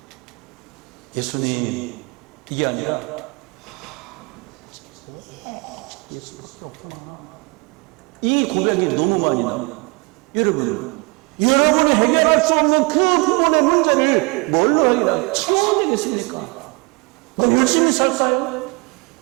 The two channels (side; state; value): left; quieter; 29.4 dB